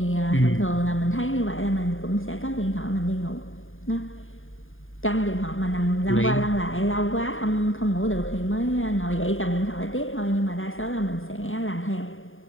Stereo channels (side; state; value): right; late; 0.59 ms